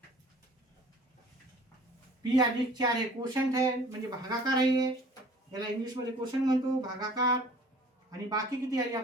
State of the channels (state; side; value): normal; both; correlation 0.49